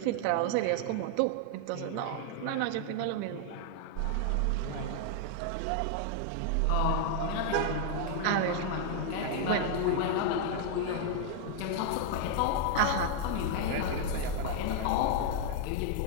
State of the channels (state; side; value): different; both; correlation 0.00